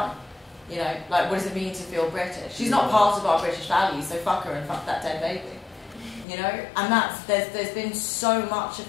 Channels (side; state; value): right; drops out; at 6.2 s